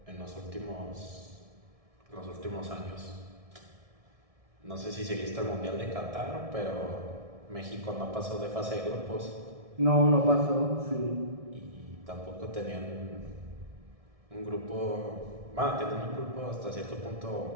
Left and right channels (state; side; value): late; left; 1.7 ms